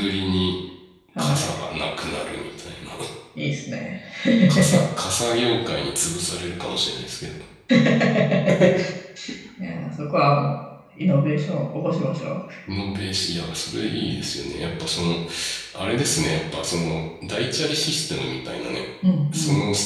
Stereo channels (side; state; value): both; identical; correlation 1.00